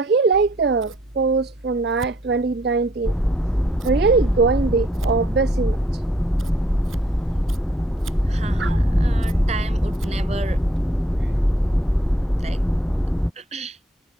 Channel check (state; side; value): normal; both; correlation 0.63